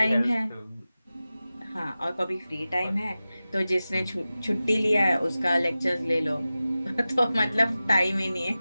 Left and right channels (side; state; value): both; inverted; correlation -0.95